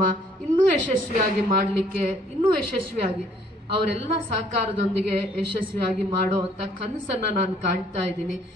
ಇನ್ನೂ ಯಶಸ್ವಿಯಾಗಿ ಮಾಡಲಿಕ್ಕೆ, ಇನ್ನೂ ಯಶಸ್ವಿಯಾಗಿ ಅವರೆಲ್ಲ ಸಹಕಾರದೊಂದಿಗೆ ಯಶಸ್ವಿಯಾಗಿ ಮಾಡೋ ಅಂತ ಕನಸನ್ನ ನಾನು ಕಾಣ್ತಾ ಇದ್ದೀನಿ.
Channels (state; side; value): normal; both; correlation 0.62